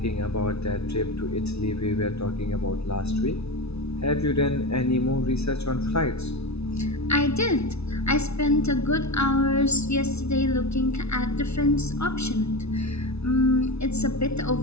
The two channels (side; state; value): right; late; 0.80 ms